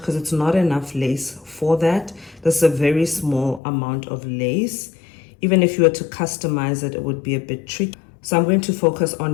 it's not enough lace for that. This is a very small amount of lace. Even if you were to customize it, it would be a bit tricky. So I'm going to focus on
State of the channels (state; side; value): drops out; right; at 3.6 s